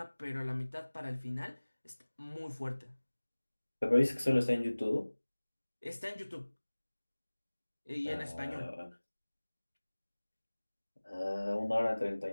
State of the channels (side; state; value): both; inverted; correlation -1.00